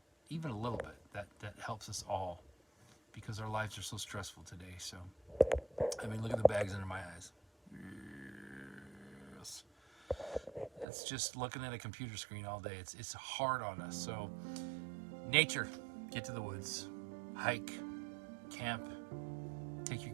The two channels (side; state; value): left; drops out; at 10.9 s